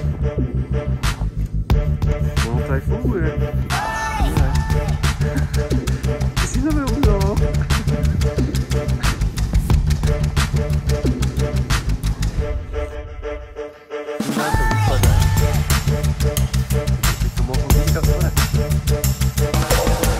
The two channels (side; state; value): both; identical; correlation 1.00